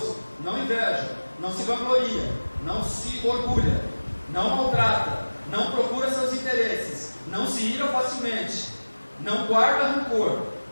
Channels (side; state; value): both; inverted; correlation -1.00